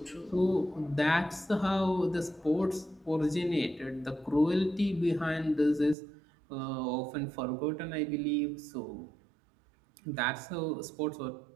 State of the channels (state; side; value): drops out; left; at 6.0 s